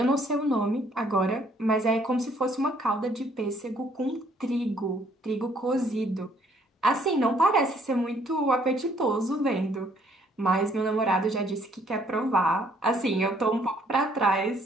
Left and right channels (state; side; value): normal; both; correlation 0.64